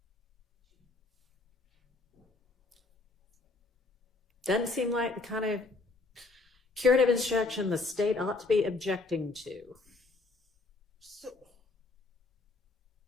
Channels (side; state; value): right; quieter; 3.5 dB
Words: Doesn't seem like the kind of curative instruction the state ought to be objecting to.